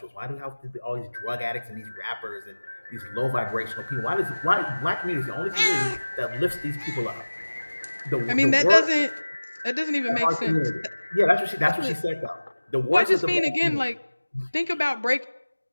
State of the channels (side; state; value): both; inverted; correlation -1.00